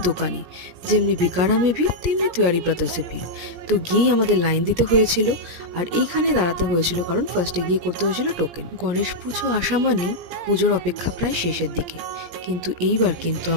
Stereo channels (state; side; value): late; left; 17 ms